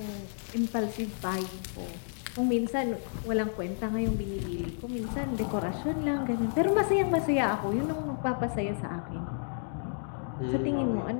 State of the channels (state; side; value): silent; right; digital silence